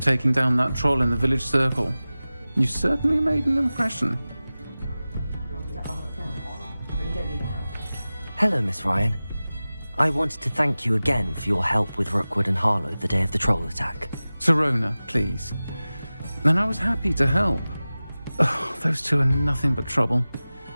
down that troll in the village circle. You certainly made an impression. Hello, Miss Ryan. I wanted to thank you again for your help with Rookwood and Harlow the day of the troll attack. Sirona, please. And I was happy to help. Oh, those two are nothing but trouble.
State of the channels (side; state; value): both; inverted; correlation -0.97